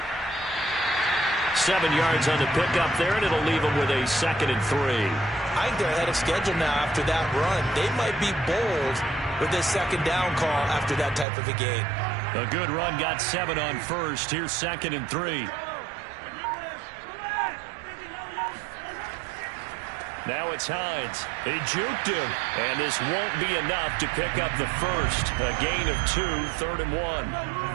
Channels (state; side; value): drops out; left; at 11.2 s